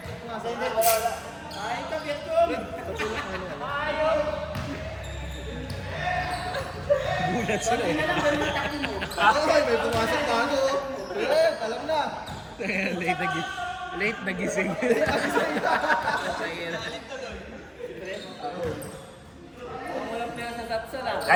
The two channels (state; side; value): identical; both; correlation 1.00